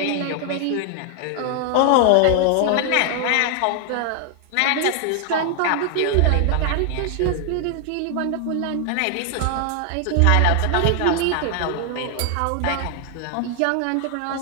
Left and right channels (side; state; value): both; different; correlation 0.00